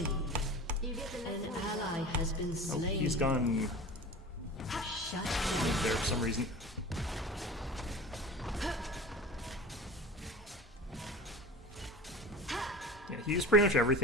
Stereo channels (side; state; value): both; normal; correlation 0.36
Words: You get the next An one. ally has been Oh, slain. he's gone Shut down. there for some reason. use pretty much